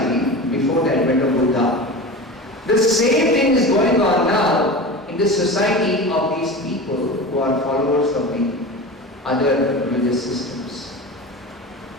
before the advent of Buddha. The same thing is going on now in the society of these people who are followers of the other religious systems.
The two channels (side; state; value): both; normal; correlation 0.30